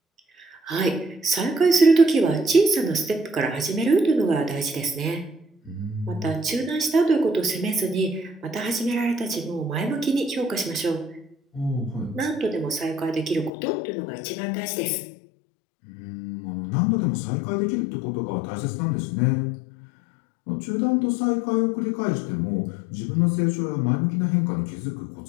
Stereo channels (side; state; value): right; drops out; at 13.5 s